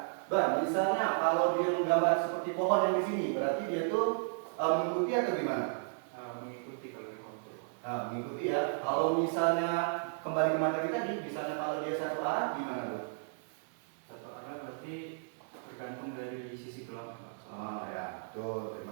misalnya kalau dia menggambar seperti pohon yang di sini, berarti dia tuh mengikuti atau gimana? Mengikuti kalau di kontur. Mengikuti ya. Kalau misalnya kembali ke materi tadi, misalnya kalau dia satu arah, gimana tuh? Satu arah berarti tergantung dari sisi gelap, Pak. Ya, betul.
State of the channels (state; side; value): silent; left; 55 dB below the other